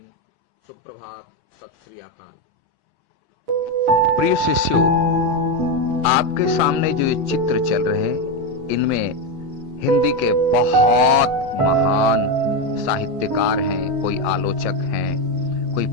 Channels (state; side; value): late; left; 7.5 ms